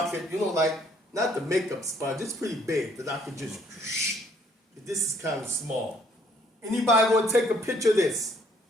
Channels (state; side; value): normal; both; correlation 0.64